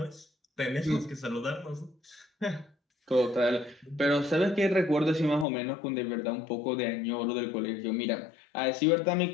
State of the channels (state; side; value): drops out; right; at 5.5 s